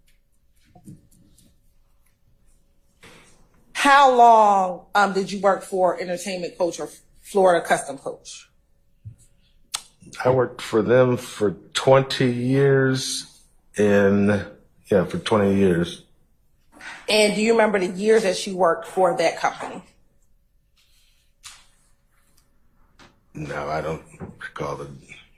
How long did you work for Entertainment Coach or Florida Custom Coach? I worked for them for 20 years, for 20 years. And do you remember the years that you worked for that company? No, I don't recall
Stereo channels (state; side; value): identical; both; correlation 1.00